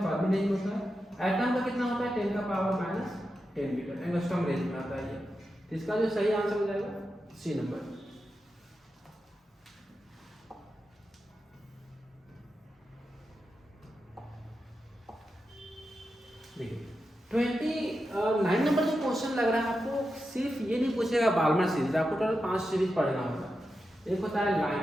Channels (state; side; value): normal; both; correlation 0.89